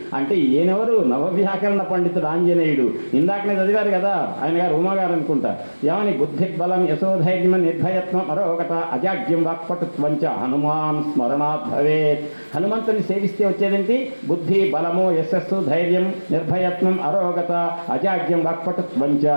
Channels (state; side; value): inverted; both; correlation -1.00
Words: అంటే ఈయనెవరు? నవవ్యాకరణ పండితుడు ఆంజనేయుడు. ఇందాకనే చదివారు కదా ఆయన గారు, ఉమాగారు అనుకుంటా. ఏమని? బుద్ధి బలం యశోధైర్యం నిర్భయత్వం మరొకట అజాగ్యం వాక్పటుత్వంచ హనుమాన్ స్మరణాత్ భవేత్. హనుమంతుని సేవిస్తే వచ్చేదేంటి? బుద్ధి, బలము, యశస్సు, ధైర్యం, నిర్భయత్వం, అరోగత, అజాగ్యం వాక్పటుత్వంచ.